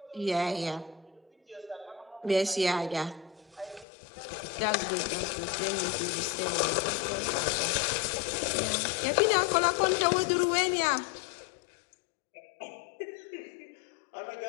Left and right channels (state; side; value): drops out; right; at 3.9 s